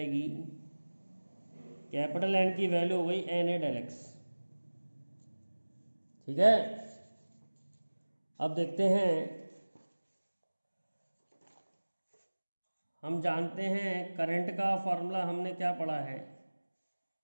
कैपिटल एन की वैल्यू हो गई एन ए डेल एक्स. ठीक है. अब देखते हैं, हम जानते हैं करंट का फॉर्मूला हमने क्या पढ़ा है.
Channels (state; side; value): inverted; both; correlation -1.00